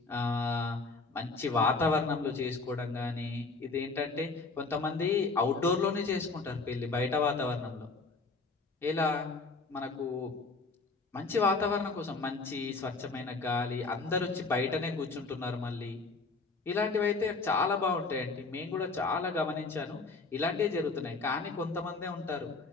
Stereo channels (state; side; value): quieter; right; 3.9 dB